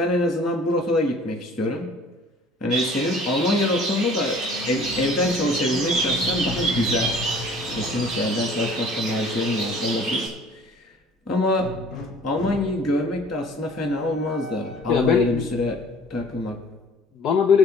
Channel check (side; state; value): both; normal; correlation 0.50